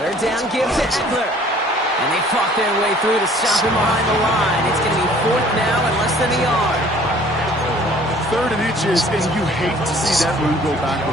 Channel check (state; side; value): normal; both; correlation 0.54